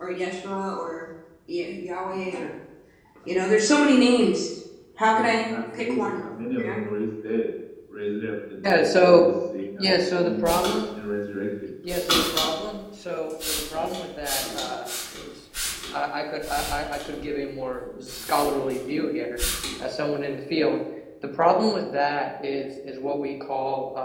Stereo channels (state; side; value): identical; both; correlation 1.00